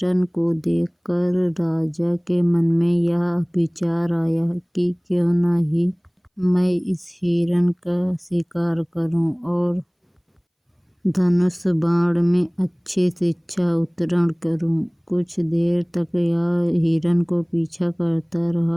को देखकर राजा के मन में यह विचार आया कि क्यों न ही मैं इस हिरन का शिकार करूं और धनुष बाण में अच्छी शिक्षा उत्तीर्ण करूं। कुछ देर तक यह हिरन को पीछा करता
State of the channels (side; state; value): both; identical; correlation 1.00